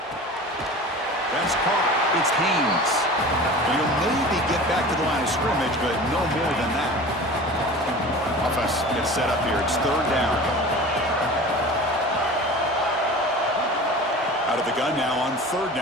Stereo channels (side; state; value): both; normal; correlation 0.37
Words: That's caught. It's Haynes. He'll maybe get back to the line of scrimmage, but no more than that. Offense gets set up here. It's third down. Out of the gun now on third